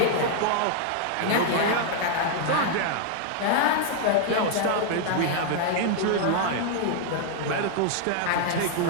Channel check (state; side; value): different; both; correlation 0.00